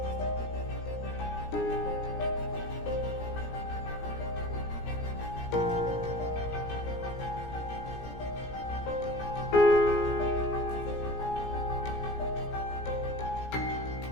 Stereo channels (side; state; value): right; late; 17 ms